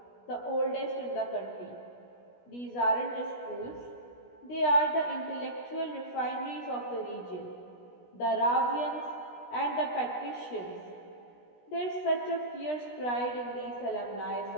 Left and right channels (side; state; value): right; late; 16 ms